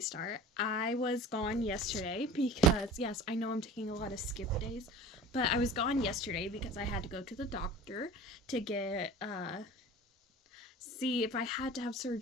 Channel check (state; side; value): normal; both; correlation 0.40